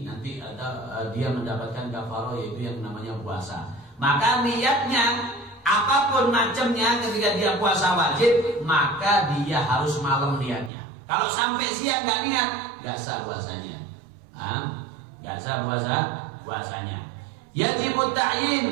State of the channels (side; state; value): left; drops out; at 10.7 s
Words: nanti ada dia mendapatkan kafaroh, yaitu yang namanya puasa. Maka niatnya apapun macamnya ketika dia puasa wajib, maka dia harus malam niatnya. Kalau sampai siang nggak niat, nggak sah puasanya. Nggak sah puasanya. Yajibut ta'yin